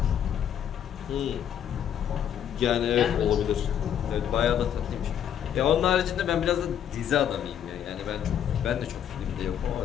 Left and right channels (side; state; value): right; quieter; 9.5 dB